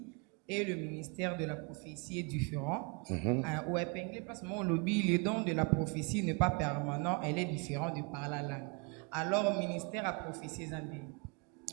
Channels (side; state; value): left; quieter; 32.3 dB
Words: et le ministère de la prophétie est différent. Au épinglé, parce que mon lobby, le don de la prophétie n'est pas permanent, elle est différente de par la langue. Alors, ministère à prophétie,